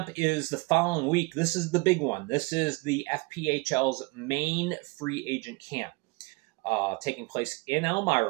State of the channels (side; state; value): left; quieter; 26.4 dB